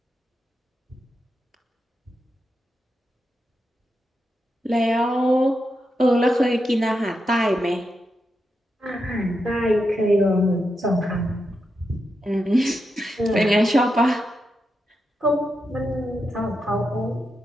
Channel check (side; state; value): both; normal; correlation 0.86